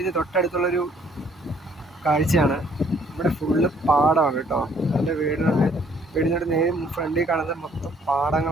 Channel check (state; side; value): normal; both; correlation 0.62